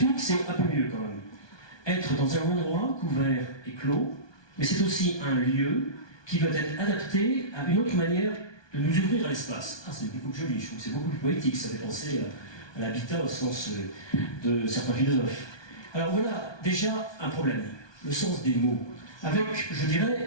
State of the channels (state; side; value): late; right; 1.2 ms